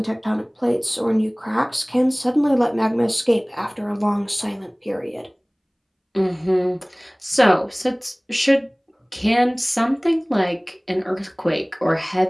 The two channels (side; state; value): both; identical; correlation 1.00